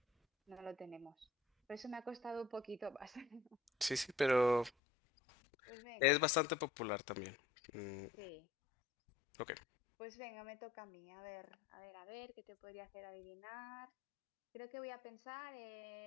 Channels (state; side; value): drops out; right; at 4.7 s